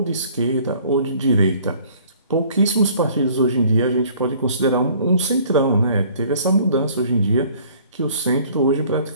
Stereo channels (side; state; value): both; inverted; correlation -0.55